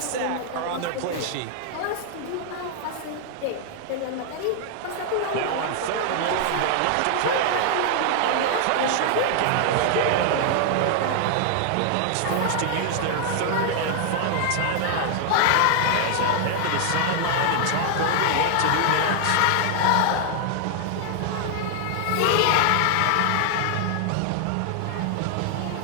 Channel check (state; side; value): different; both; correlation 0.00